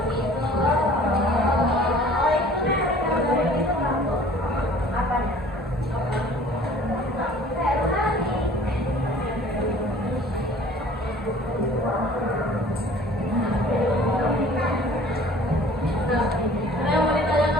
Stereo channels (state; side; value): normal; both; correlation 0.49